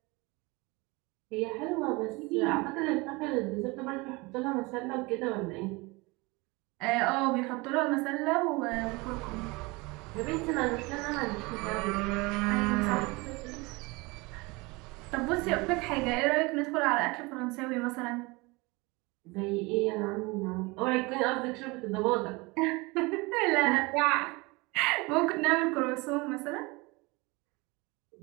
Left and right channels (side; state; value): left; quieter; 25.0 dB